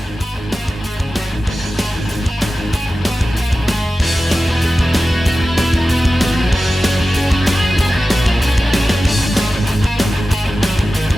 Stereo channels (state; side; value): normal; both; correlation 0.94